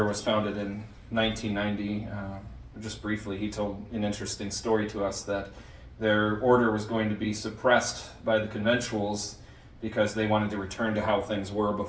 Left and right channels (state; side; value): identical; both; correlation 1.00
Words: was founded in 1990. Just briefly, he told an interesting story to us that their order was going to be suppressed by the conventuals because they wanted to return to how things were